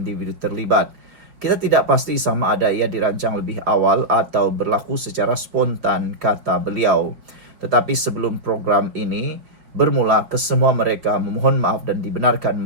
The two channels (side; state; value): left; late; 4.8 ms